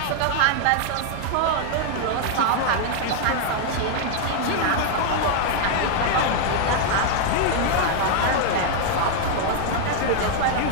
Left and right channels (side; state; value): both; different; correlation 0.00